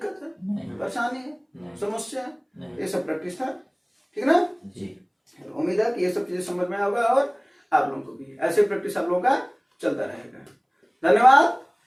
है, नहीं। परेशानी है, नहीं। समस्या है, नहीं। ये सब प्रैक्टिस था, ठीक ना। जी। तो उम्मीद है कि ये सब चीजें समझ में होगा और आप लोगों को भी ऐसे प्रैक्टिस आप लोगों का चलता रहेगा। धन्यवाद,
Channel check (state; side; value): identical; both; correlation 1.00